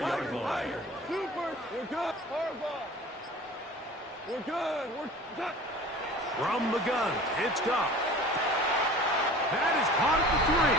line. Super. We're good. Harbaugh. We're good. We're done. From the gun, it's Goff. That is caught at the 3.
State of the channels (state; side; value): normal; both; correlation 0.42